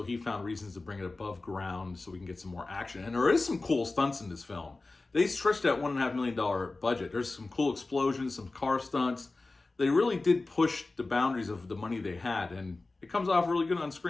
he found reasons to bring it above ground so we can get some more action. And there is some cool stunts in this film. They stretched that $1.5 million budget. There's some cool explosions, some car stunts. They really did push the boundaries of the money they had, and it comes off really good on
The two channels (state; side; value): quieter; right; 3.4 dB